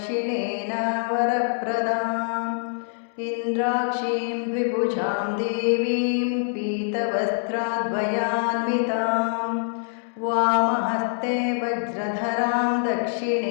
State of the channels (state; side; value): silent; right; 62 dB below the other